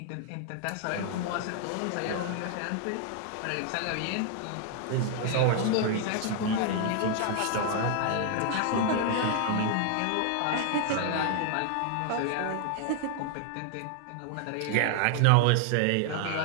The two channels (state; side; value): different; both; correlation 0.00